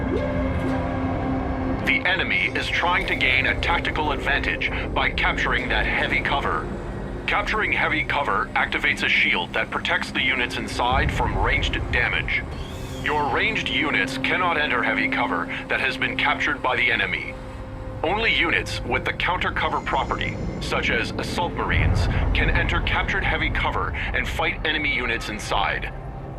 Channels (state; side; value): identical; both; correlation 1.00